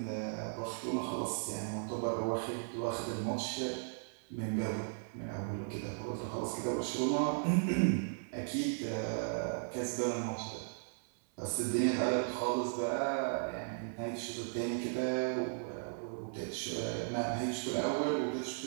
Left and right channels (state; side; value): silent; left; 53 dB below the other